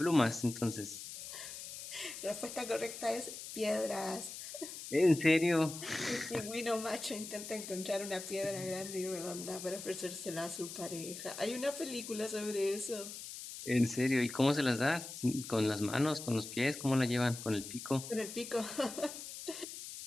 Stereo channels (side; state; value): left; noise; hiss, 10 dB below the sound